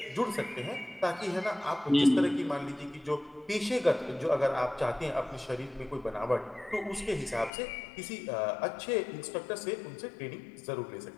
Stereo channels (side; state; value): right; drops out; at 7.5 s